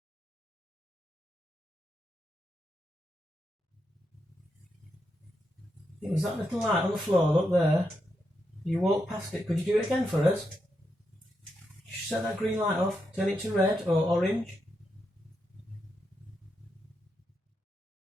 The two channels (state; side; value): normal; both; correlation 0.83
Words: It was that little light on the floor, look there. You walk past it. Could you do it again for us? Just set that green light off, turn it to red or orange.